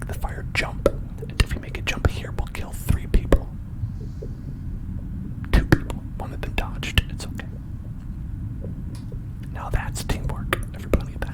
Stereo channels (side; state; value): both; identical; correlation 1.00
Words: the fire jump. And if we make it jump here, we'll kill 3 people. 2 people. One of them dodged. It's okay. Now that's teamwork, everybody.